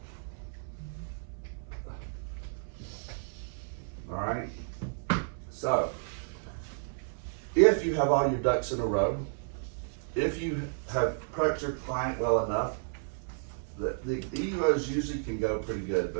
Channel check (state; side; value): silent; left; 56 dB below the other